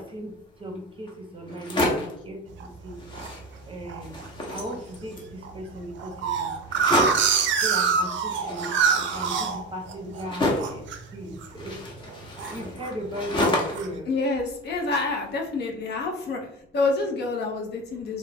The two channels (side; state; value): both; normal; correlation 0.24